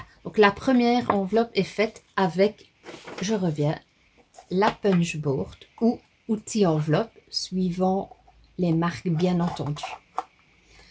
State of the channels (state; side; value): identical; both; correlation 1.00